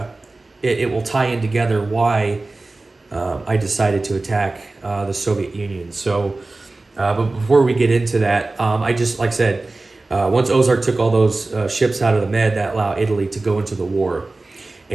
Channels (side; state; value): left; quieter; 3.2 dB